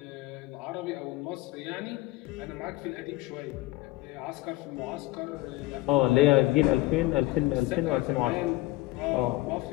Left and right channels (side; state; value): right; quieter; 19.2 dB